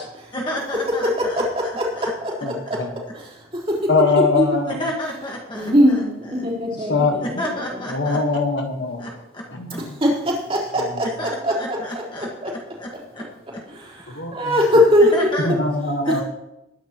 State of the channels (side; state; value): both; normal; correlation 0.43